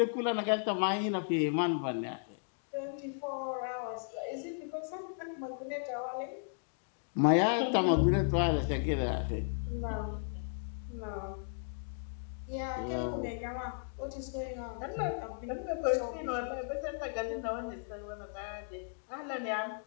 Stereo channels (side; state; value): right; silent; digital silence